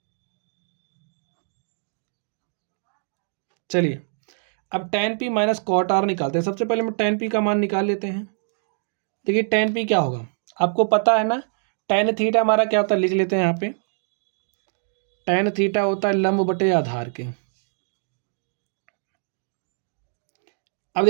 चलिए अब tan p minus cot r निकालते हैं। सबसे पहले हम tan p का मान निकाल लेते हैं। देखिए tan p क्या होगा आपको पता है ना, tan थीटा हमारा क्या होता है, लिख लेते हैं यहाँ पे, tan थीटा होता है लंब बटे आधार के। अब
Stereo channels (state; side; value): silent; left; digital silence